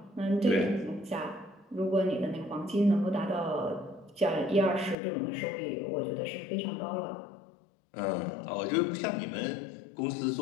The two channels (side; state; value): right; drops out; at 5.0 s